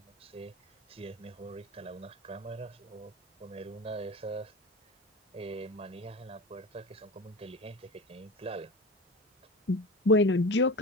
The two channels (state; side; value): normal; both; correlation 0.29